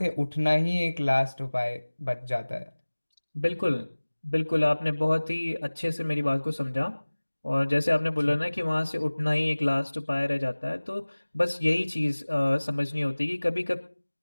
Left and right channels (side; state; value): both; inverted; correlation -1.00